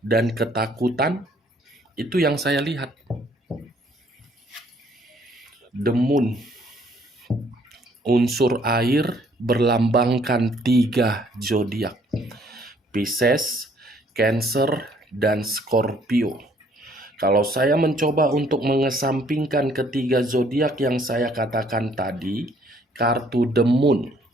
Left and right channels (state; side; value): normal; both; correlation 0.63